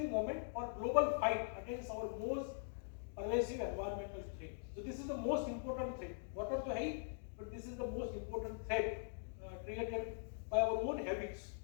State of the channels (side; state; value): right; silent; digital silence